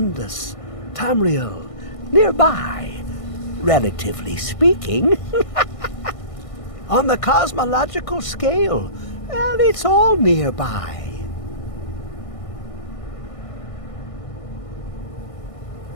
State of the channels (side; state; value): right; late; 1.6 ms